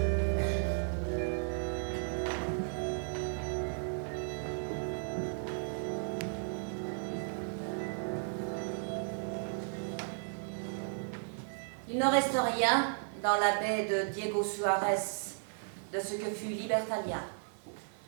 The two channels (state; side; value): silent; left; 54 dB below the other